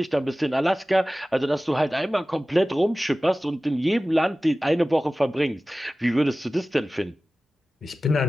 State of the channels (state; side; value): normal; both; correlation 0.97